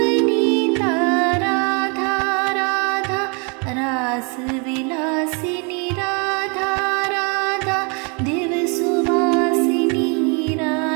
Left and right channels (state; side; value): quieter; left; 34.0 dB